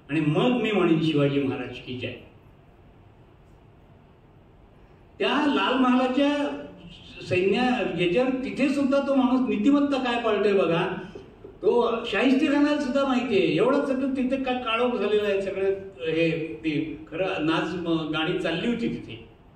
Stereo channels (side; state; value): both; identical; correlation 1.00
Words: आणि मग मी म्हणेन शिवाजी महाराज की जय. त्या लाल महालाच्या सैन्य याच्यावर तिथे सुद्धा तो माणूस नीतिमत्ता काय पाळतोय बघा. तो शाहिस्तेखानाला सुद्धा माहिती आहे. एवढं सगळं तिथे काय काळोख झालेलं आहे सगळं. हे ते खरं नाच गाणी चालली होती तिथे.